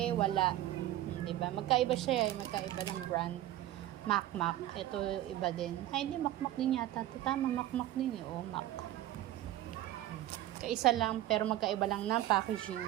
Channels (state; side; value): quieter; left; 14.2 dB